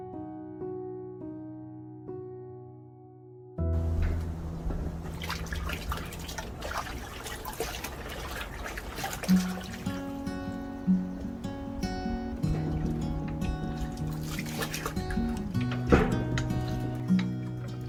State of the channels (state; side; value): identical; both; correlation 1.00